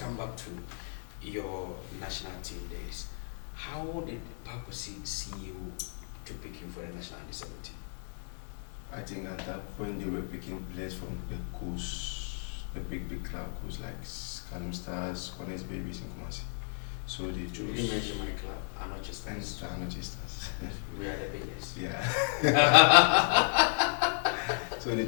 back to your national team days. How did Papa see you to pick him for the national under 17? I think at that point they were picking players from the coast, the big club coast like Calum Stars, Cornets Babies in Kumasi. So they chose. You didn't mention my club, Anoche Stars. And Anoche Stars. We are the biggest. Yeah. So they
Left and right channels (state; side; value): silent; right; digital silence